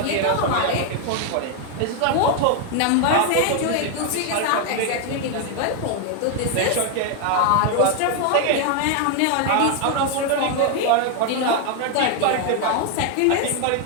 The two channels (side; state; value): both; different; correlation 0.01